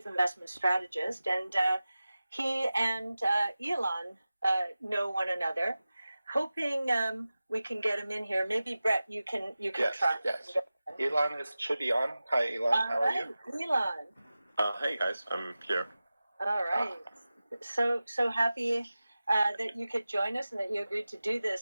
investment strategist, and he and Elon know one another. Hoping we can get him in here. Maybe Brett, you can try. Yes. Elon should be on. Hi, Elon. How are you? Elon. Hey guys, I'm here. All right. So happy that you could join us and that you agreed to do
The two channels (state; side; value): inverted; both; correlation -0.96